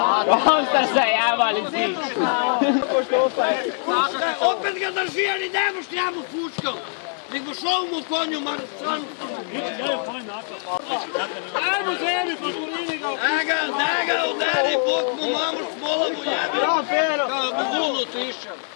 Osta se javali si. Opet ga drži, ali ne moš njemu pučkom. Nego šao mu konju, Marcanu. Ajmo zemi, poškolini ga! Da ga udari, bok mu mamu smola mu jebi. Kao bi vunu tišao.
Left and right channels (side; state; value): right; silent; 55 dB below the other